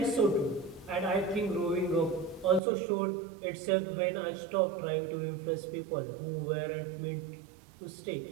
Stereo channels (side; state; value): left; drops out; at 2.6 s